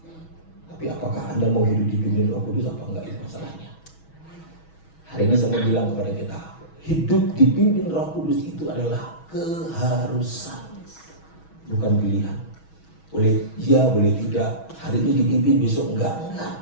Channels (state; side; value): late; right; 6.2 ms